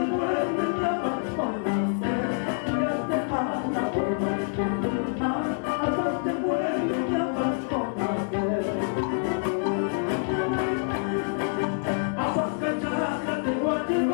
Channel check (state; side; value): silent; right; digital silence